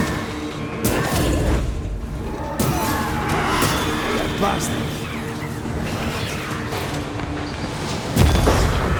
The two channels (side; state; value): both; identical; correlation 1.00